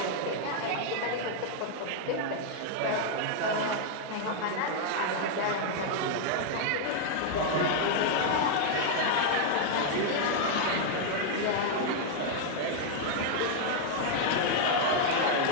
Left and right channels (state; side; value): different; both; correlation 0.00